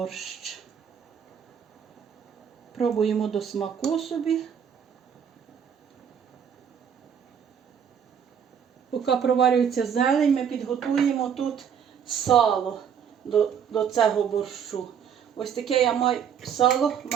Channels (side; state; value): left; quieter; 7.9 dB